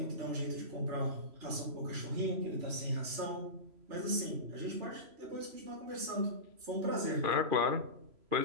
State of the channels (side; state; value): left; late; 3.0 ms